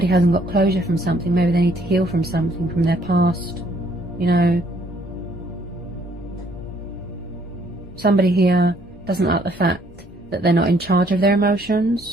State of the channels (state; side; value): normal; both; correlation 0.65